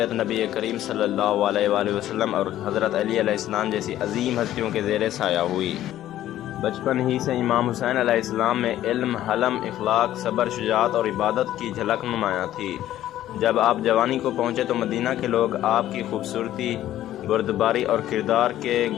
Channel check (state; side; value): quieter; right; 13.0 dB